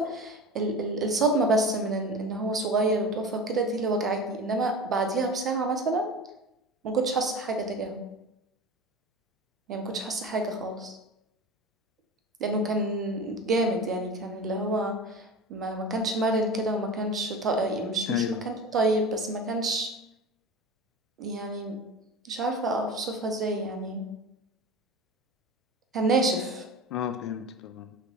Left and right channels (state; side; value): normal; both; correlation 0.32